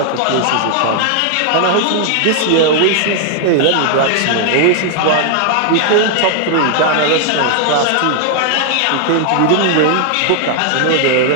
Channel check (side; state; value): both; different; correlation 0.00